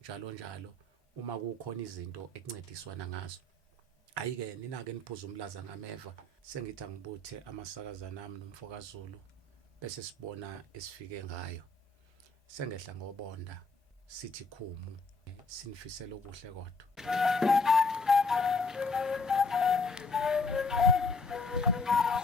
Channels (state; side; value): quieter; right; 3.2 dB